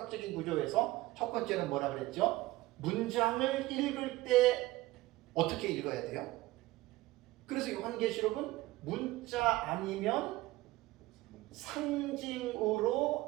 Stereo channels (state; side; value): quieter; left; 18.6 dB